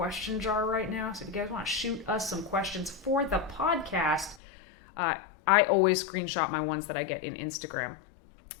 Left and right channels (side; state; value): right; drops out; at 4.4 s